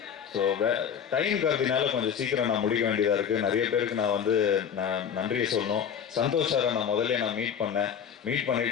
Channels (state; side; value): quieter; right; 7.9 dB